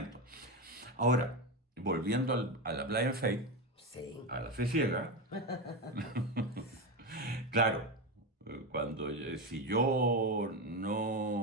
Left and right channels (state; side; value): normal; both; correlation 0.15